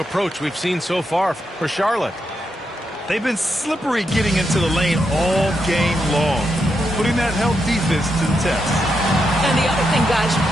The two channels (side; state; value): both; normal; correlation 0.83